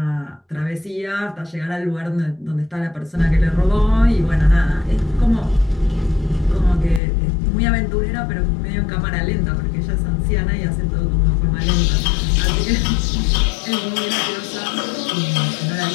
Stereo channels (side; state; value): right; drops out; at 7.0 s